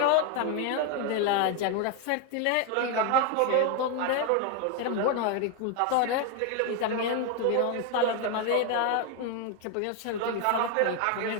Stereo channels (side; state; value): both; different; correlation 0.01